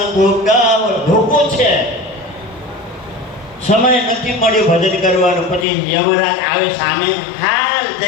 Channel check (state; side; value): drops out; right; at 5.7 s